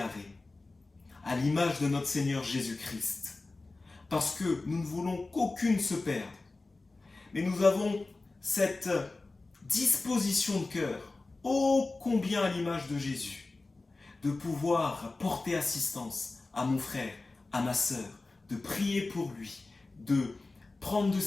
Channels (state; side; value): quieter; right; 3.4 dB